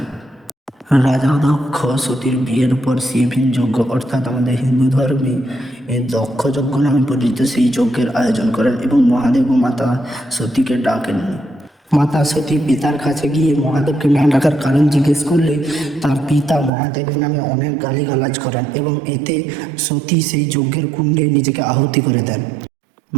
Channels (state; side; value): drops out; left; at 16.7 s